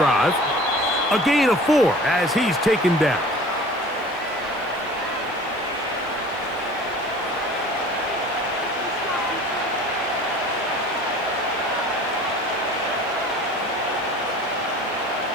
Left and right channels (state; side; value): noise; left; hiss, 28 dB below the sound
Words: A gain of 4 as he's taken down.